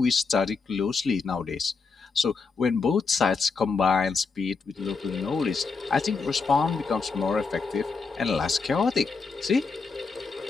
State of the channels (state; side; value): quieter; right; 4.7 dB